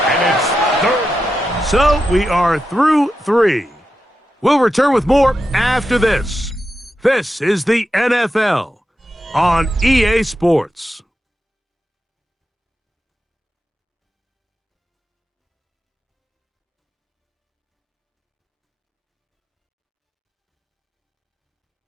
And it's 3rd. So we are through 3. We'll return with more after this. This is the NFL on EA Sports.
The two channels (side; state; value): both; normal; correlation 0.88